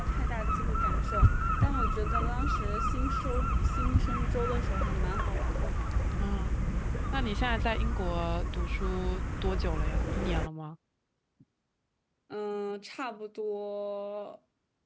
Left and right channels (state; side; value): identical; both; correlation 1.00